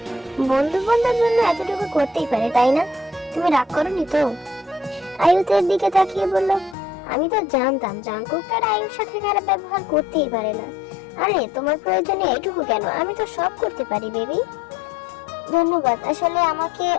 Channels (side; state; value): right; drops out; at 6.8 s